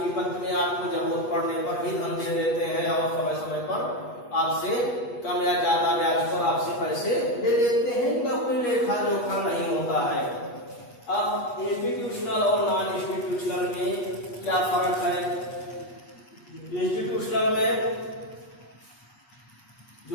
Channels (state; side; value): late; right; 8.3 ms